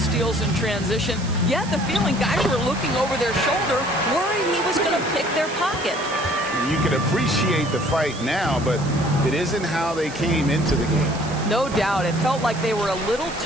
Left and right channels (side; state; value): right; noise; hiss, 15 dB below the sound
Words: in transition. You had the feeling guys were looking over their shoulder, worried he was going to pick their pocket. You can appreciate the fight now, but it isn't how they came into the game. No doubt. It felt like they were a little